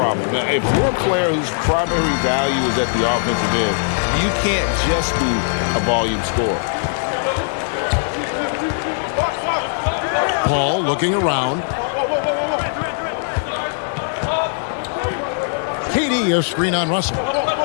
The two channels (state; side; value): silent; right; digital silence